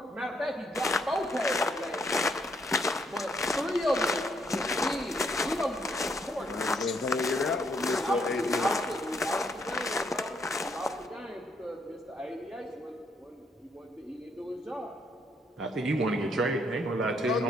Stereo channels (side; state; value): both; normal; correlation 0.72